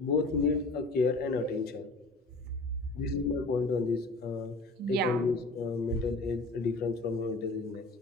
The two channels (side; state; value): right; quieter; 3.0 dB